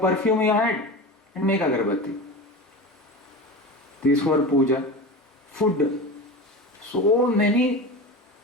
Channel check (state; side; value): normal; both; correlation 0.28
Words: you had and make agarbatti. This for puja. Food. So many